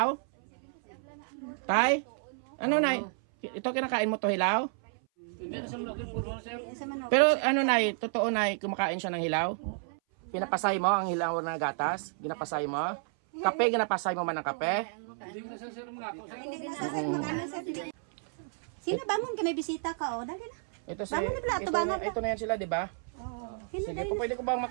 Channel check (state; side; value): silent; left; 57 dB below the other